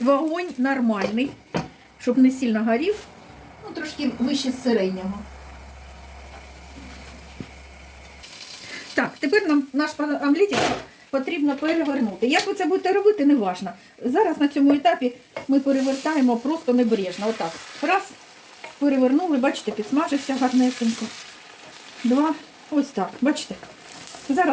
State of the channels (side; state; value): both; identical; correlation 1.00